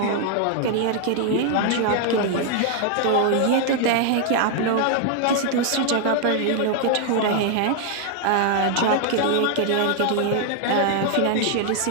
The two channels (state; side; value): different; both; correlation 0.00